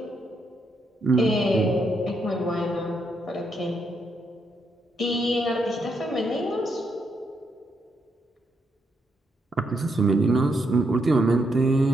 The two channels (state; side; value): normal; both; correlation 0.78